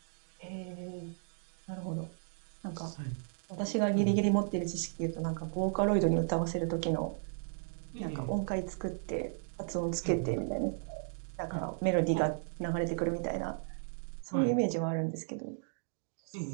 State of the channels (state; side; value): silent; left; digital silence